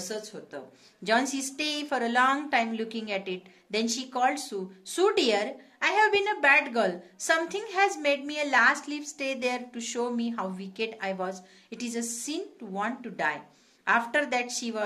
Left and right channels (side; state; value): both; identical; correlation 1.00